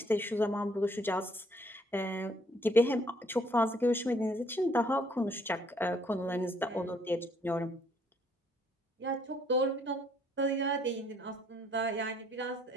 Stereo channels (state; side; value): normal; both; correlation 0.65